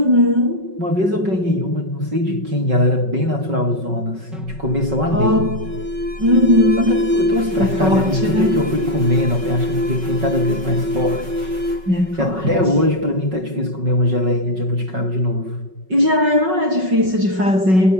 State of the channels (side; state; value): left; late; 5.4 ms